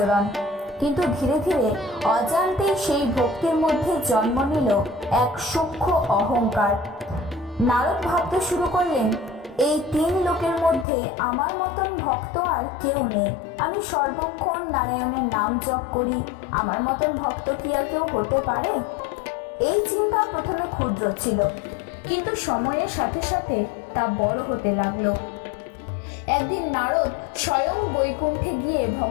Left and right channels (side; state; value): right; drops out; at 10.9 s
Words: কিন্তু ধীরে ধীরে অজান্তেই সেই ভক্তির মধ্যে জন্ম নিল এক সূক্ষ্ম অহংকার। নারদ ভাবতে শুরু করলেন, এই তিন লোকের মধ্যে আমার মতন ভক্ত আর কেউ নেই। আমি সর্বক্ষণ নারায়ণের নাম জপ করি, আমার মতন ভক্ত কি আর কেউ হতে পারে? এই চিন্তা প্রথমে ক্ষুদ্র ছিল, কিন্তু সময়ের সাথে সাথে তা বড় হতে লাগলো। একদিন নারদ স্বয়ং বৈকুণ্ঠে গিয়ে